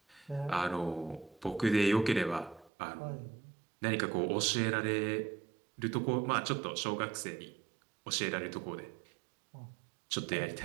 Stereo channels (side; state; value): left; drops out; at 2.7 s